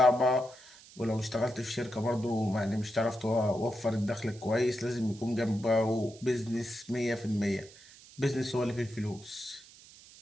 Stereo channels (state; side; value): noise; right; hiss, 21 dB below the sound